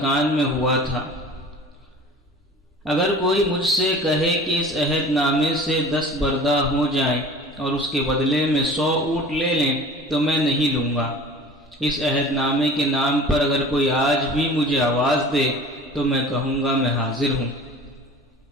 میں ہوا تھا۔ اگر کوئی مجھ سے کہے کہ اس عہد نامے سے 10 بردہ ہو جائیں اور اس کے بدلے میں 100 اونٹ لے لیں تو میں نہیں لوں گا۔ اس عہد نامے کے نام پر اگر کوئی آج بھی مجھے آواز دے تو میں کہوں گا میں حاضر ہوں۔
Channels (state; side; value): normal; both; correlation 0.42